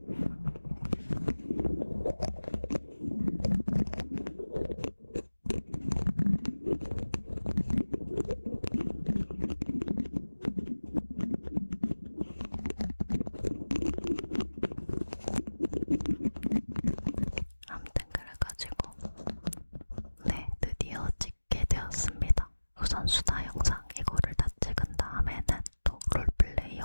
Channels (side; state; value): both; inverted; correlation -1.00